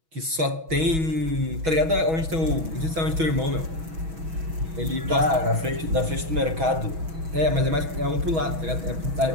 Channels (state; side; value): late; left; 6.2 ms